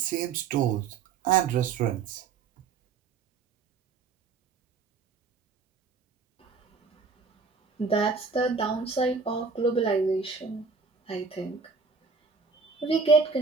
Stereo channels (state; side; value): quieter; left; 5.0 dB